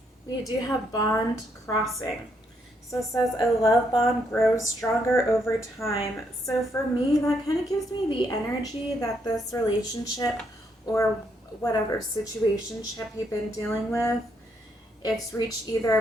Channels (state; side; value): normal; both; correlation 0.75